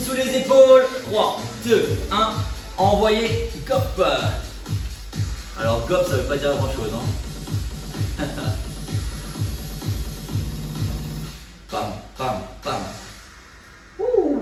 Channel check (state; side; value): identical; both; correlation 1.00